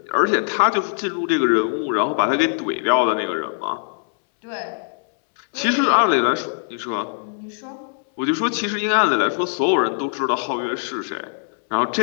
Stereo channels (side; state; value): right; silent; 65 dB below the other